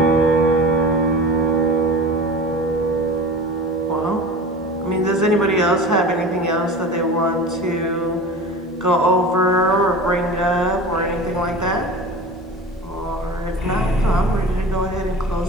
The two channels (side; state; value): both; normal; correlation 0.35